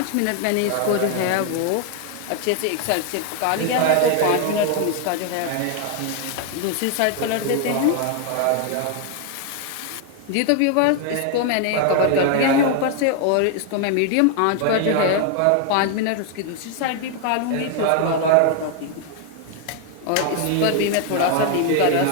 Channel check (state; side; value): different; both; correlation 0.00